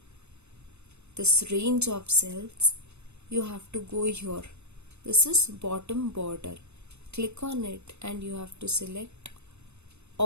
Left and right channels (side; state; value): left; late; 0.81 ms